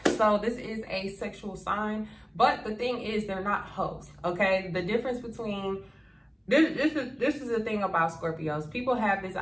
So this is a sexual sign, but the thing is, they're not hoes. Okay, the difference between this is the thing about Scorpios. People have this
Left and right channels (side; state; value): both; identical; correlation 1.00